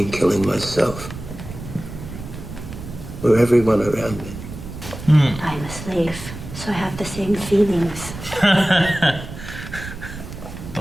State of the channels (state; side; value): noise; right; rumble, 11 dB below the sound